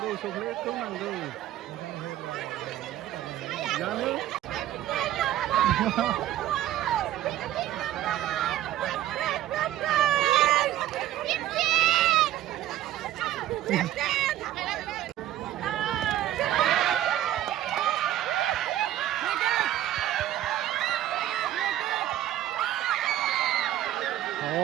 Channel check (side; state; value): left; quieter; 13.0 dB